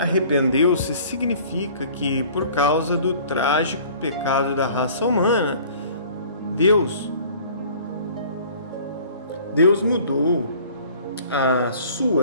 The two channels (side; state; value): both; inverted; correlation -0.50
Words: significa que por causa do trágico pecado da raça humana, Deus mudou a